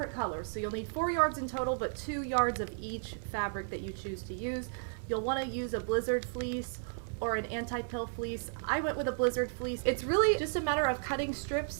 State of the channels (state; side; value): silent; left; digital silence